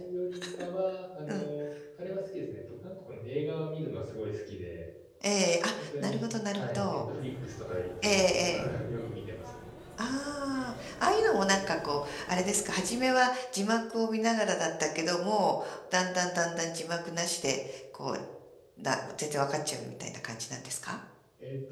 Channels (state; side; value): identical; both; correlation 1.00